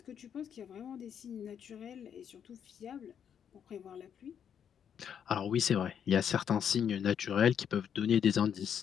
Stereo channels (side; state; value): right; quieter; 8.3 dB